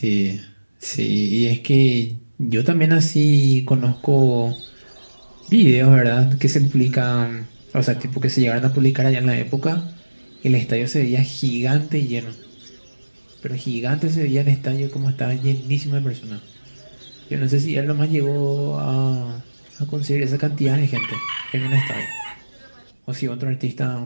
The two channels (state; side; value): inverted; both; correlation -1.00